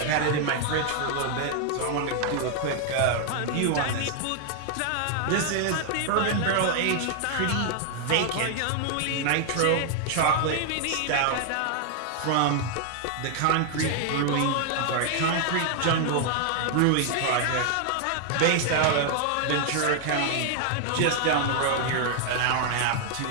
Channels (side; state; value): both; different; correlation 0.00